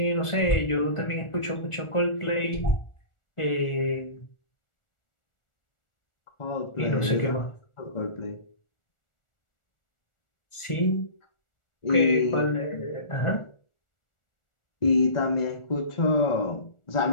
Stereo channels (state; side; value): late; right; 1.4 ms